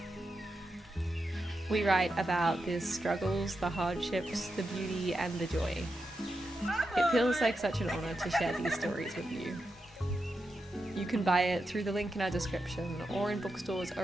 We write about the struggles, the hardships, the beauty, and the joy. It feels like such an honour to share these stories with you. You can buy it through the link in our description or in bookstores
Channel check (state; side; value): normal; both; correlation 0.88